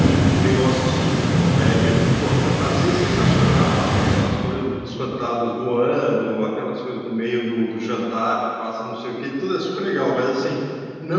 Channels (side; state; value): both; identical; correlation 1.00